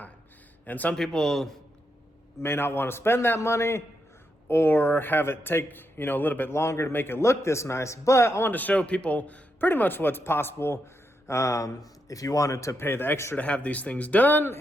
And some people may not want to spend that money or have it take, a little bit longer to make it look this nice. But I wanted to show people pretty much what's possible if you wanted to pay the extra to have these things done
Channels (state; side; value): normal; both; correlation 0.83